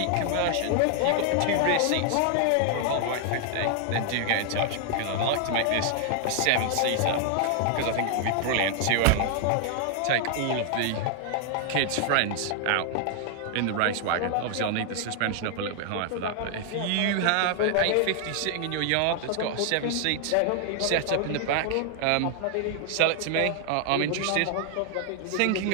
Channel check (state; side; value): different; both; correlation 0.00